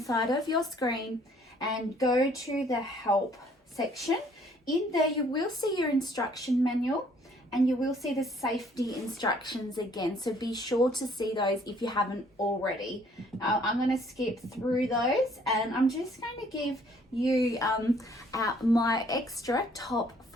side of your screen, and go to the help section. In there you will see your instruction manual and you will see the safety instructions again, so be sure to see those if you haven't already. I'm going to skip through those and I'm just going to give you my extra top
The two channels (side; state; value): both; normal; correlation 0.61